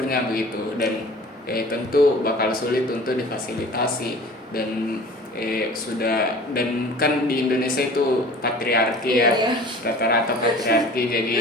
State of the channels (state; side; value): normal; both; correlation 0.44